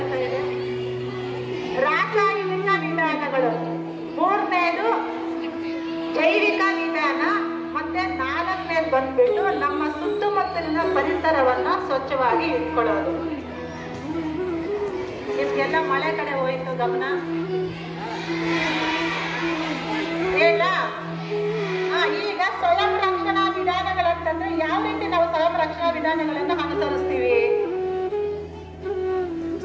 ಇದೆ ರಾಸಾಯನಿಕ ವಿಧಾನಗಳು, ಮೂರನೇದು ಜೈವಿಕ ವಿಧಾನ, ಮತ್ತೆ 4ನೇದು ಬಂದ್ಬಿಟ್ಟು ನಮ್ಮ ಸುತ್ತಮುತ್ತಲಿನ ಪರಿಸರವನ್ನ ಸ್ವಚ್ಛವಾಗಿ ಇಟ್ಕೊಳ್ಳೋದು. ನಿಮ್ಗೆಲ್ಲ ಮಳೆ ಕಡೆ ಹೋಯ್ತು ಗಮನ ಹೇಳ. ಈಗ ಸ್ವಯಂ ರಕ್ಷಣಾ ವಿಧಾನಗಳಂತಂದ್ರೆ ಯಾವ ರೀತಿ ನಾವು ಸ್ವಯಂ ರಕ್ಷಣಾ ವಿಧಾನಗಳನ್ನ ಅನುಸರಿಸ್ತೀವಿ?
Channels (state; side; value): identical; both; correlation 1.00